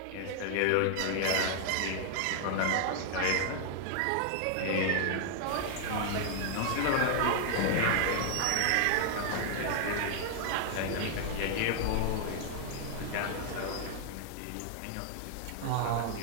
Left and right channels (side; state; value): both; different; correlation 0.00